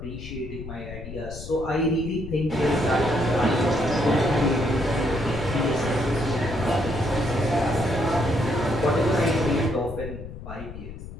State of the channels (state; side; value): noise; left; rumble, 11 dB below the sound